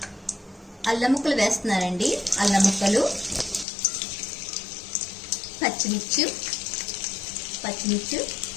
అల్లం ముక్కలు వేస్తున్నారండి. అల్లం ముక్కలు, పచ్చిమిర్చి,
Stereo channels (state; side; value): drops out; right; at 3.7 s